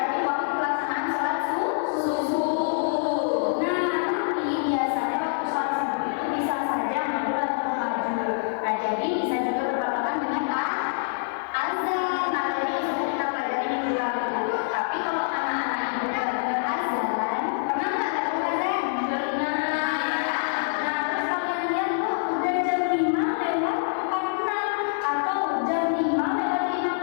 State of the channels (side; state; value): right; silent; digital silence